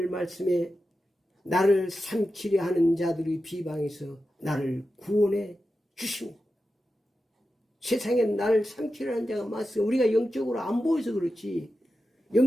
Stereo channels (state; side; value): normal; both; correlation 0.91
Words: 말씀에 나를 삼키려 하는 자들의 비방에서 나를 구원해 주십니다. 세상에 나를 삼키려 하는 자가 많습니다. 우리가 영적으로 안 보여서 그렇지,